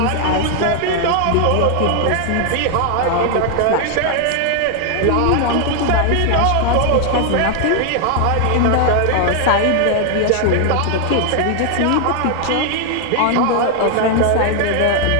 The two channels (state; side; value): different; both; correlation 0.00